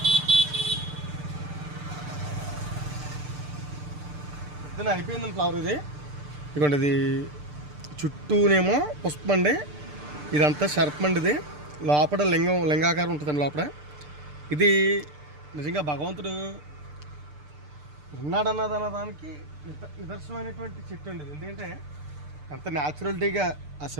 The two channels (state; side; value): late; left; 6.7 ms